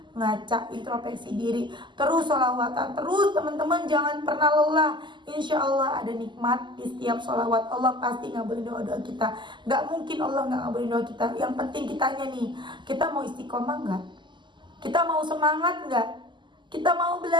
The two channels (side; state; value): left; late; 0.22 ms